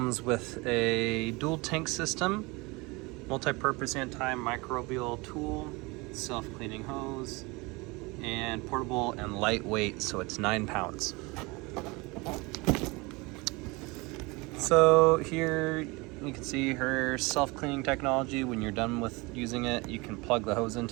with a dual tank system, multi-purpose antimicrobial tool, self-cleaning hose, and portable and lightweight, so it's 9 pounds. So here you can see her self-cleaning technology. When you're done with using it, you can plug the hose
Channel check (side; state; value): left; quieter; 25.3 dB